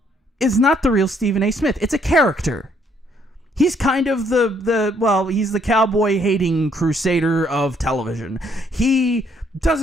is not the real Stephen A. Smith. It's a character. He's kind of he's the cowboy-hating crusader of television. He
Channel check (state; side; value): normal; both; correlation 0.68